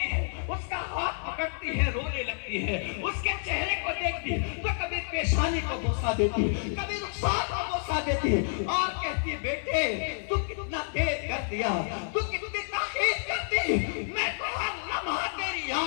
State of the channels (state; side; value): silent; right; 57 dB below the other